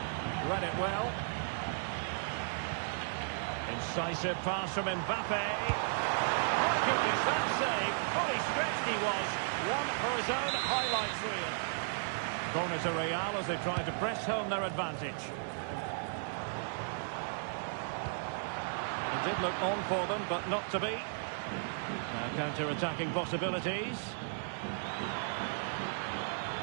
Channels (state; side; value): silent; left; 54 dB below the other